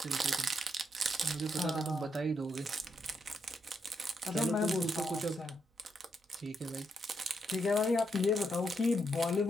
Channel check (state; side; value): normal; both; correlation 0.79